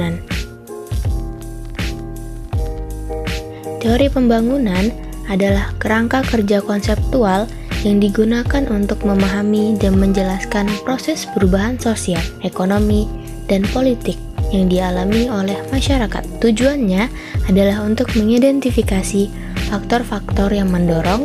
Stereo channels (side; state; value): both; identical; correlation 1.00